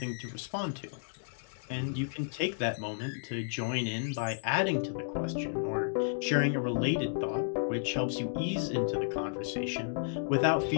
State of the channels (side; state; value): right; silent; digital silence